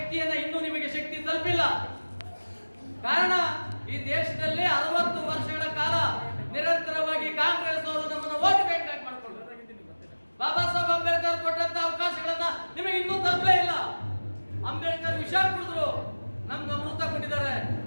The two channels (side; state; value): both; inverted; correlation -1.00